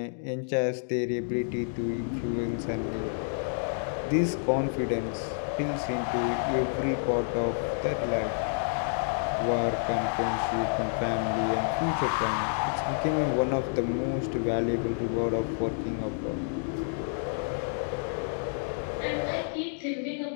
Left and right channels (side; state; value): right; silent; digital silence